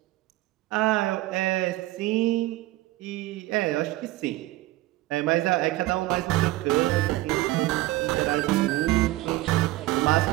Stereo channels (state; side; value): quieter; left; 17.5 dB